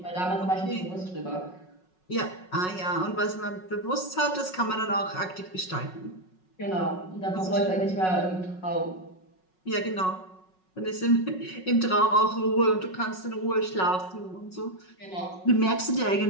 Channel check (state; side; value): late; right; 5.4 ms